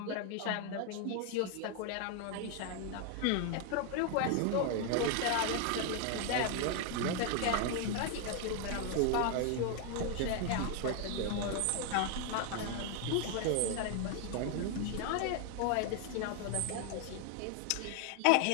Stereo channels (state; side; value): different; both; correlation 0.00